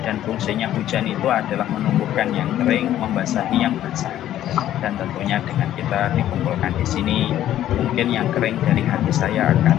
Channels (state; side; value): quieter; right; 12.3 dB